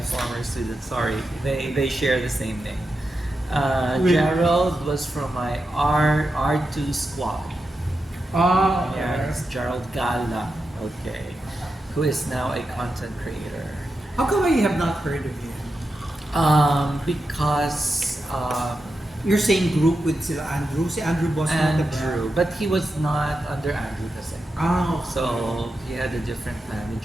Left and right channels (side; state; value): both; normal; correlation 0.89